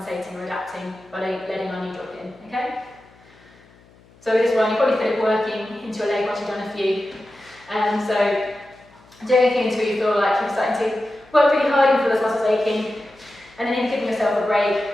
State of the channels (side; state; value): left; noise; hum, 28 dB below the sound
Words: or adapting by letting our knee drop in, okay? So with this one, you probably feel it working into your leg once you've done a few. So do anything until you feel like you're starting to work really hard, you feel those muscles aching, and then you're giving yourself a break,